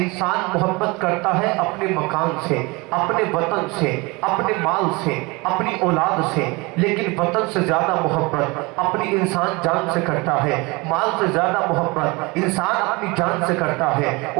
محبت کرتا ہے اپنے مکان سے، اپنے وطن سے، اپنے مال سے، اپنی اولاد سے، لیکن وطن سے زیادہ محبت اپنی انسان جان سے کرتا ہے، مال سے زیادہ محبت انسان اپنی جان سے کرتا ہے،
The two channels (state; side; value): quieter; left; 25.5 dB